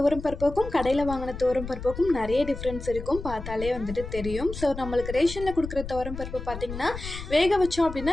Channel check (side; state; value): left; noise; rumble, 9 dB below the sound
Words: பருப்புக்கும் கடையில் வாங்கின துவரம் பருப்புக்கும் நிறைய டிஃப்ரென்ஸ் இருக்கும், பார்த்தாலே வந்துட்டு தெரியும். ஸோ நம்மளுக்கு ரேஷனில் கொடுக்குற துவரம் பருப்பு பார்த்திங்கன்னா வேக வச்சோம் அப்படின்னா